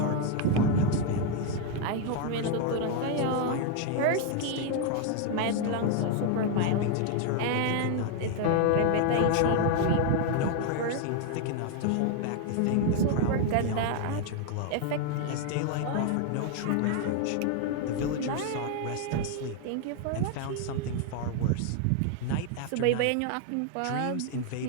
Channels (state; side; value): different; both; correlation 0.00